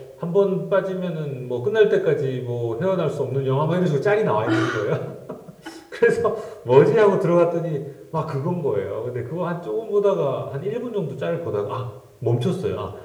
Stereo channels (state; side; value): identical; both; correlation 1.00